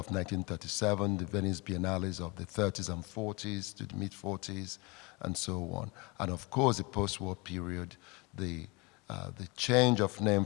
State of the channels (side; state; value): right; quieter; 27.0 dB